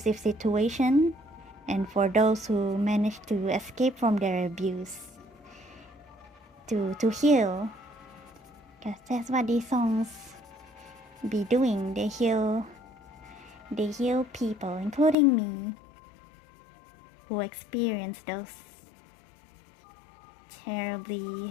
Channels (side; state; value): right; drops out; at 15.2 s